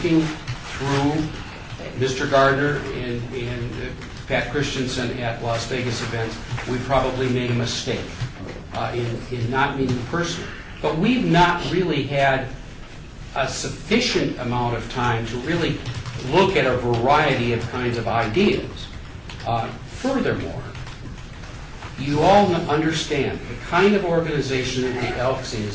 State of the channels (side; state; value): both; identical; correlation 1.00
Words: through Mr. Gardner and Pat Christensen at Las Vegas events. We probably made a mistake in not meeting personally. But we've not really had a sufficient amount of time to really look at a variety of kinds of ideas. Furthermore, you all understand the kind of organization that the Elks